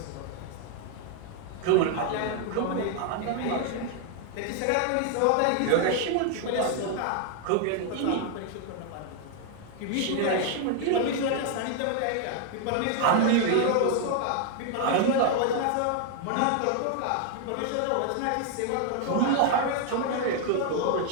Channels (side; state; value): both; different; correlation 0.00